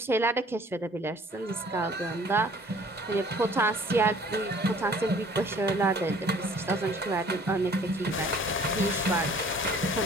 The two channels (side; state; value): both; normal; correlation 0.53